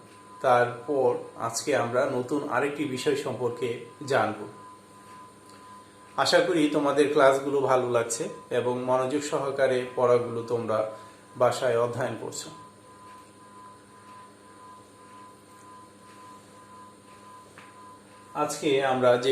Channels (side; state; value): both; identical; correlation 1.00